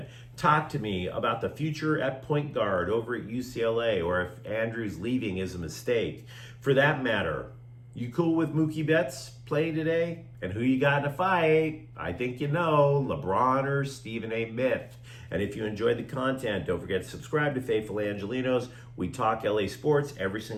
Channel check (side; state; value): both; identical; correlation 1.00